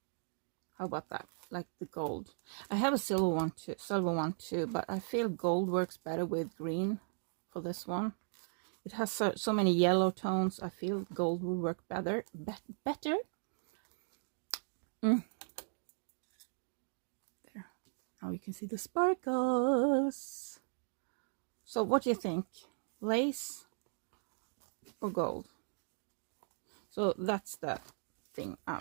How about that? Like the gold. I have a silver one too, but I feel gold works better with green for this one. it has so many yellow tones. I feel gold will work better. There. Now you can see the sparkles. So what do you think? Lace or gold? So that's the thing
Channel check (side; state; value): left; silent; digital silence